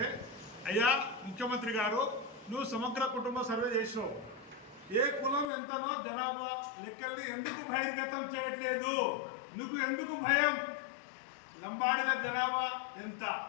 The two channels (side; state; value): right; drops out; at 5.5 s